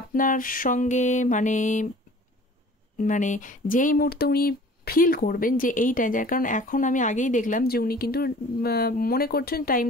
আপনার সঙ্গে মানে মানে যেই মুহূর্তে উনি ফিল করবেন যে এইটা, যার কারণ এখন আমি আগেই দেখলাম যে উনি কিন্তু মনে করছেন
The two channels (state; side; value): normal; both; correlation 0.47